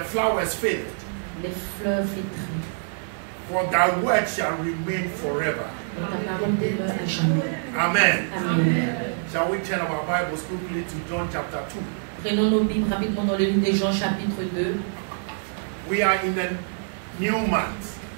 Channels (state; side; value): silent; left; digital silence